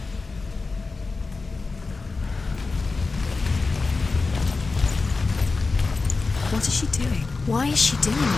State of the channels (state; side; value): quieter; right; 4.0 dB